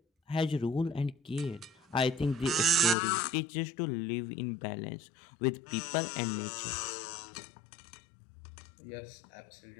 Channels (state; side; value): drops out; right; at 3.0 s